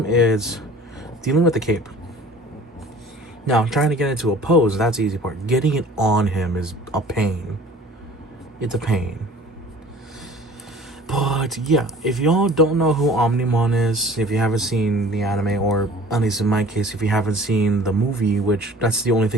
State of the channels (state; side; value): normal; both; correlation 0.47